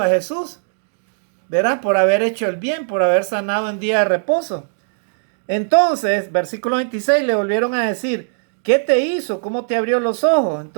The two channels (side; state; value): left; silent; digital silence